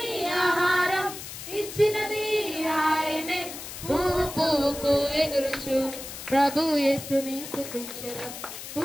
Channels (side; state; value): left; noise; hiss, 10 dB below the sound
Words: ఆహారం ఇచ్చినది ఆయనే. పువ్వు పువ్వుకు ఎగురుచు ప్రభు యేసుని స్తుతించెదం.